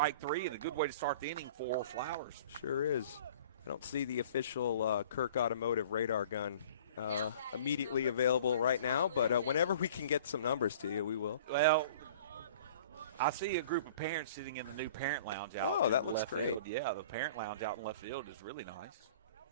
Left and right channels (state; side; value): inverted; both; correlation -0.47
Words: three, and a good way to start the inning for Flowers. Sure is. I don't see the official Kirk Automotive radar gun immediately available right now, but whenever we can get some numbers to you, we will. Well, I see a group of parents sitting in the new parent lounge out. Oh, that looks great. Field. Yeah, the parent lounge out in left field is really nice.